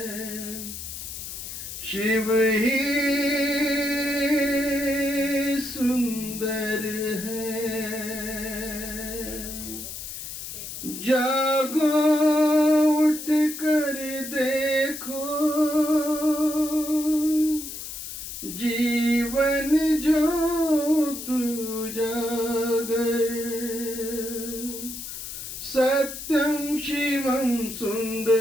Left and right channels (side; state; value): left; noise; hiss, 9 dB below the sound